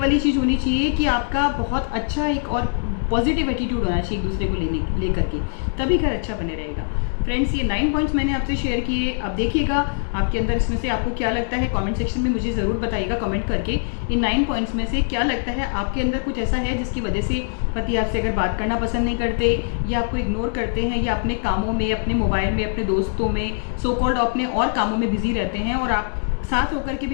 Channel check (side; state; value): right; silent; digital silence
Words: चीज़ होनी चाहिए कि आपका बहुत अच्छा एक और पॉजिटिव एटीट्यूड होना चाहिए एक दूसरे को लेकर के, तभी घर अच्छा बने रहेगा। फ्रेंड्स ये 9 पॉइंट्स मैंने आपसे शेयर किए। अब देखिएगा आपके अंदर इसमें से आपको क्या लगता है, कमेंट सेक्शन में मुझे ज़रूर बताइएगा कमेंट करके, इन 9 पॉइंट्स में से क्या लगता है आपके अंदर कुछ ऐसा है जिसकी वजह से पति आपसे अगर बात करना पसंद नहीं करते, या आपको इग्नोर करते हैं, या अपने कामों में, अपने मोबाइल में, अपने दोस्तों में, सो कॉल्ड अपने और कामों में बिजी रहते हैं, और आप साथ होकर के